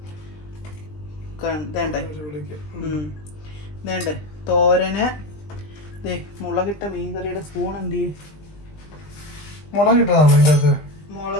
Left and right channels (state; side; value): late; right; 20 ms